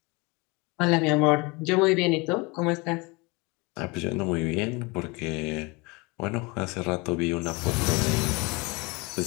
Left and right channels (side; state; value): right; quieter; 26.6 dB